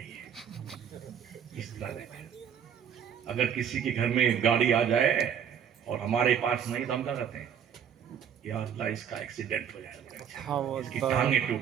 گی اس طرح۔ اگر کسی کے گھر میں گاڑی آ جائے اور ہمارے پاس نہیں تو ہم کیا کرتے ہیں، یا اللہ اس کا ایکسیڈنٹ ہو جائے، اس کی ٹانگیں ٹوٹ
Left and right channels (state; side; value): quieter; left; 8.3 dB